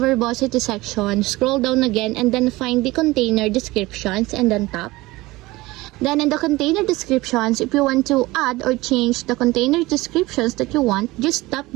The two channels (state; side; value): quieter; left; 20.0 dB